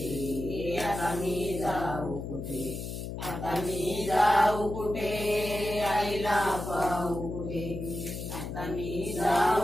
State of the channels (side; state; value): left; noise; hum, 7 dB below the sound